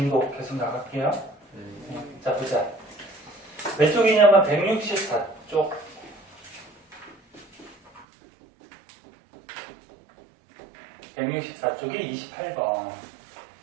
계속 나갈게요. 자, 보자. 몇 쪽이냐면 164쪽. 164쪽이 28번.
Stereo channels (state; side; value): drops out; left; at 8.1 s